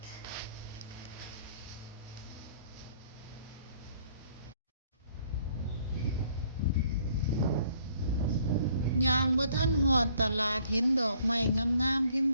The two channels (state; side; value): inverted; both; correlation -0.62